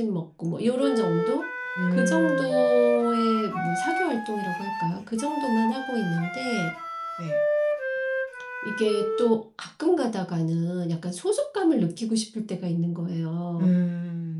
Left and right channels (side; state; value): both; identical; correlation 1.00